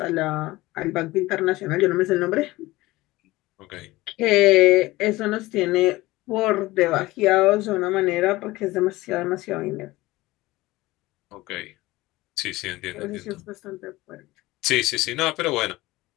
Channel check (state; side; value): quieter; right; 19.1 dB